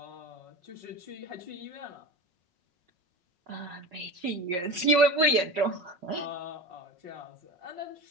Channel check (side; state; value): left; late; 5.5 ms